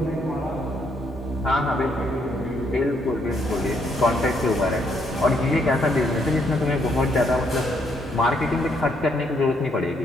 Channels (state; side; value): normal; both; correlation 0.72